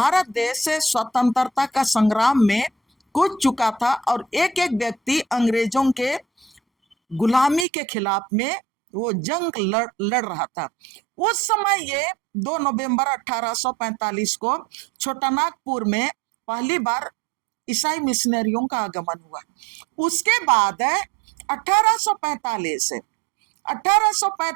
देश से स्वतंत्रता का संग्राम में कूद चुका था, और एक एक व्यक्ति अंग्रेजों के गुलामी के खिलाफ में वो जंग लड़ रहा था। उस समय ये 2 नवंबर 1845 को छोटानागपुर में पहली बार ईसाई मिशनरियों का आगमन हुआ। उसके बाद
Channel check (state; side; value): drops out; left; at 7.7 s